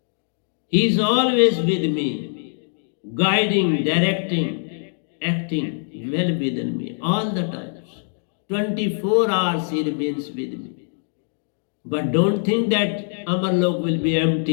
He is always with me, guiding, directing, acting well within me all the times. 24 hours he remains with me. But don't think that Amarlok will be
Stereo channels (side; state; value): right; silent; digital silence